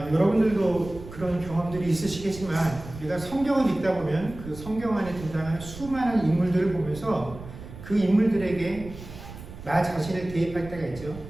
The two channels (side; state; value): right; noise; rumble, 14 dB below the sound